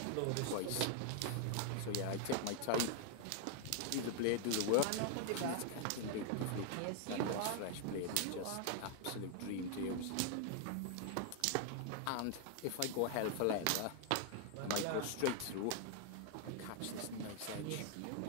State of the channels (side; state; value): both; different; correlation 0.00